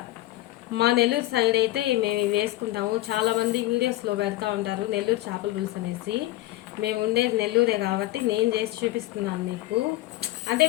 మా నెల్లూరు సైడ్ అయితే మేము వేసుకుంటాము. చాలామంది వీడియోస్లో పెడతా ఉంటారు నెల్లూరు చేపల పులుసు అనేసి. మేము ఉండేది నెల్లూరే కాబట్టి నేను చేసి చూపిస్తున్నాను మీకు. అంటే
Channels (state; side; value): quieter; right; 16.6 dB